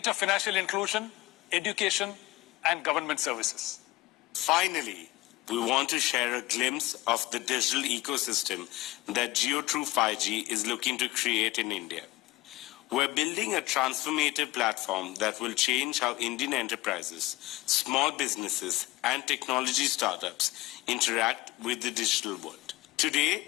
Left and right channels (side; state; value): right; quieter; 19.0 dB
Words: financial inclusion, education, and government services. Finally, we want to share a glimpse of the digital ecosystem that Jio True 5G is looking to create in India. We're building a transformative platform that will change how Indian enterprises, small businesses, and technology startups interact with the digital world. Today,